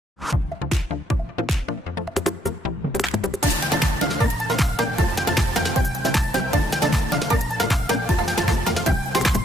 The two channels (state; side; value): normal; both; correlation 0.71